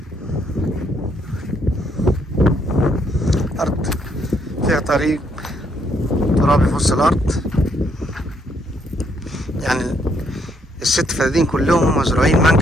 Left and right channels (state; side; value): normal; both; correlation 0.71